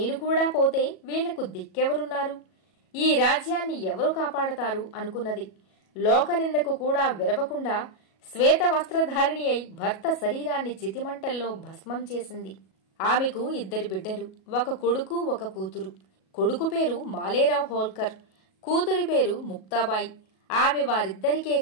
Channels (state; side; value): late; right; 37 ms